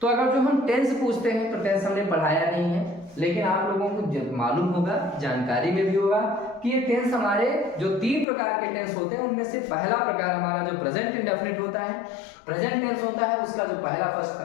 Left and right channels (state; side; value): drops out; right; at 8.2 s